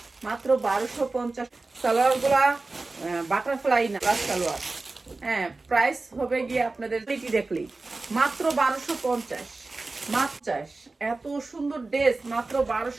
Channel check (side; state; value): left; quieter; 3.5 dB